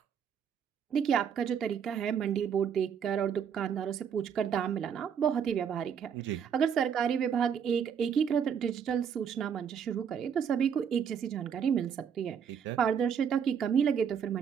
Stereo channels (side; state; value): left; quieter; 7.6 dB